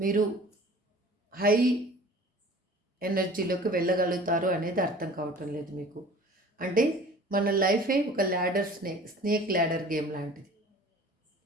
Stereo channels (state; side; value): normal; both; correlation 0.46